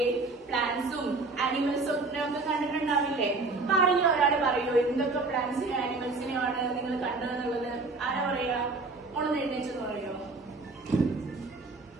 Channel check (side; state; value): left; quieter; 3.6 dB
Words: പ്ലാന്റ്സും ആനിമൽസും ഒക്കെ കണ്ടിട്ടുണ്ടാവില്ലേ? അപ്പൊ ആരെങ്കിലും ഒരാൾ പറയോ എന്തൊക്കെ പ്ലാന്റ്സിനെയും ആനിമൽസിനെയാണ് നിങ്ങൾ കണ്ടതെന്നുള്ളത്? ആരാ പറയാ? ഒന്ന് എഴുന്നേച്ചെന്ന് പറയോ?